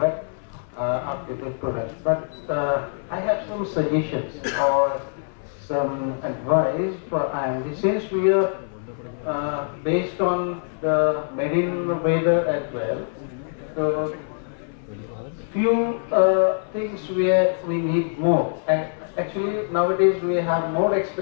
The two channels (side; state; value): right; silent; 61 dB below the other